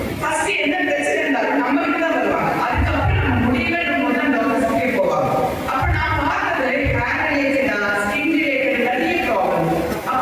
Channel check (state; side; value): identical; both; correlation 1.00